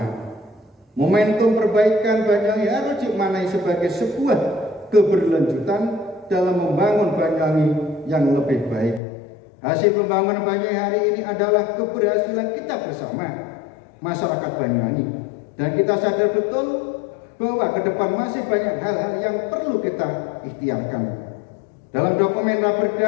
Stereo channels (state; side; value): drops out; right; at 9.0 s